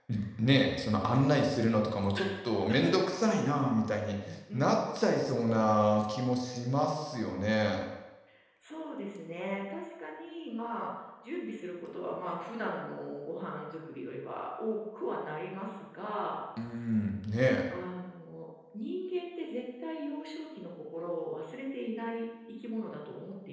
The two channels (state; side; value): identical; both; correlation 1.00